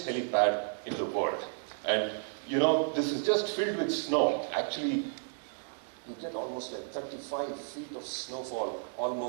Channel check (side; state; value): left; silent; digital silence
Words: helipad in the world. And you know, this is just filled with snow. Actually, you get almost like 35 feet of snowfall,